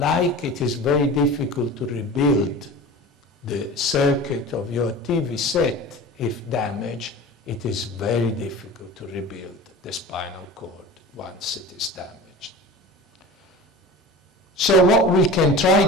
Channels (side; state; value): both; normal; correlation 0.36